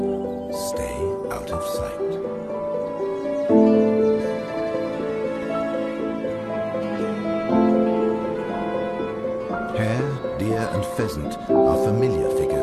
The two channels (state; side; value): identical; both; correlation 1.00